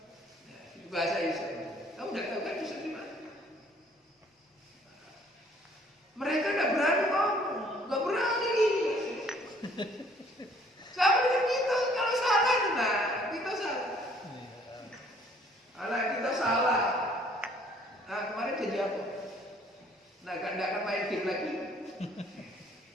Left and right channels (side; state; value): both; normal; correlation 0.60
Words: Bahasa Yusuf. Kamu tidak tahu kan Yusuf di mana? Mereka tidak berani ngomong, nggak berani. Sama dengan kita, kalau salah nah kita salah. Anak kita salah. Nah kemarin jadi apa? Nah kan tidak akan main game lagi.